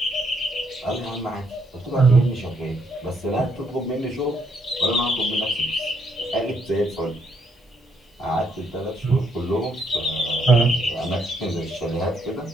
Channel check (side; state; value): both; normal; correlation 0.73